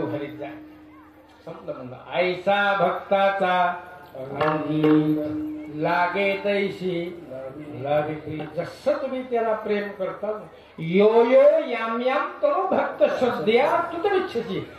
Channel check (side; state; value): both; identical; correlation 1.00